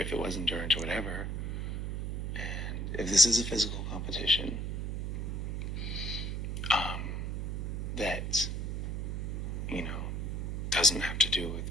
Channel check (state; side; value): noise; right; hum, 2 dB below the sound